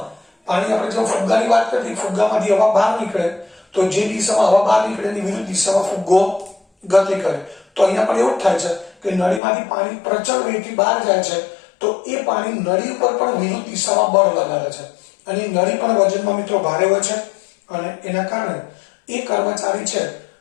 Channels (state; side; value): drops out; right; at 9.4 s